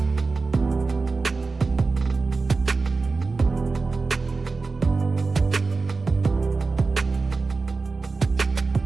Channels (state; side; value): quieter; left; 4.0 dB